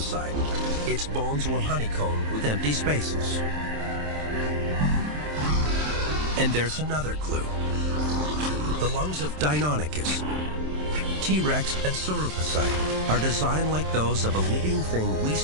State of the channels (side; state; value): left; late; 27 ms